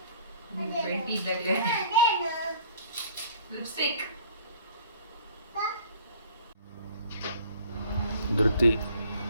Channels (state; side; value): inverted; both; correlation -0.51